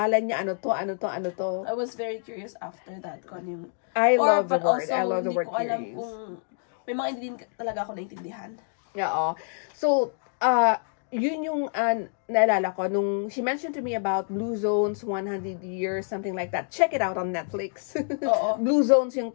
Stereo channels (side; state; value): right; silent; digital silence